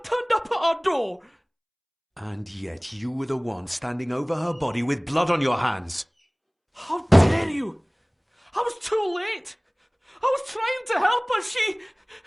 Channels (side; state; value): both; identical; correlation 1.00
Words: turned up at our door? And yet you were the one standing over her body with blood on your hands. How dare you! I was too late! I was trying to help her, she...